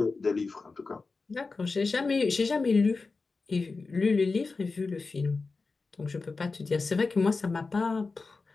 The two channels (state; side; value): quieter; right; 4.1 dB